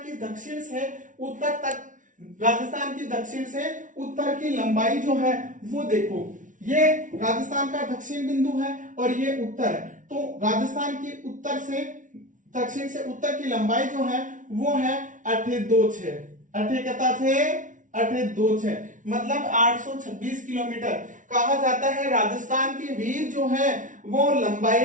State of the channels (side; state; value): left; late; 0.37 ms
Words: दक्षिण से उत्तर तक, राजस्थान की दक्षिण से उत्तर की लंबाई जो है वो देखो, ये राजस्थान का दक्षिण बिंदु है और ये उत्तर है। तो राजस्थान की उत्तर से दक्षिण से उत्तर की लंबाई जो है वो है 826, 826 मतलब 826 किलोमीटर। कहा जाता है राजस्थान के वीर जो है वो